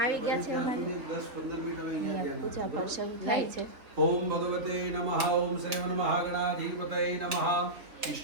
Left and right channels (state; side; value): late; left; 3.5 ms